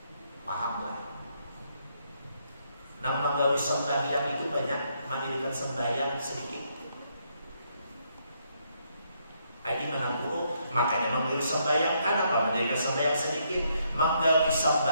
Pahamlah. Yang menggawi sembahyang itu banyak, mendirikan sembahyang sedikit. Ini mana buruk? Makanya menggawi sembahyang, kenapa mendirikan sembahyang sedikit? Menggawi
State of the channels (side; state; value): both; inverted; correlation -0.74